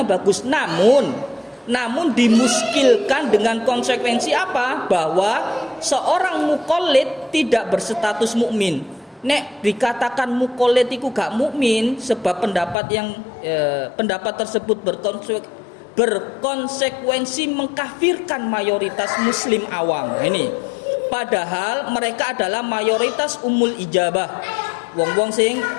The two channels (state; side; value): drops out; right; at 12.8 s